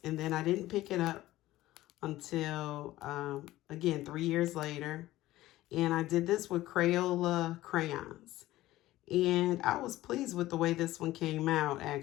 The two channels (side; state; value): right; quieter; 16.2 dB